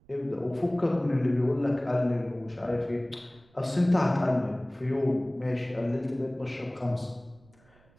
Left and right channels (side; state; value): right; noise; rumble, 30 dB below the sound